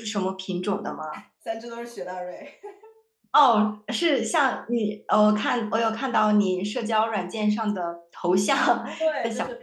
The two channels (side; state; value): both; identical; correlation 1.00